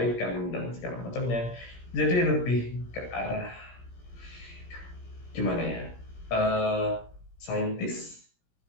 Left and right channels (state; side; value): late; right; 17 ms